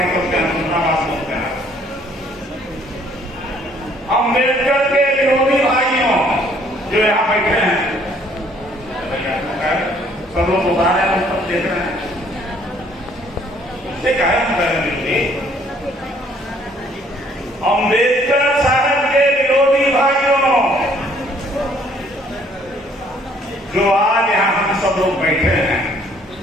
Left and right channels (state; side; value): normal; both; correlation 0.62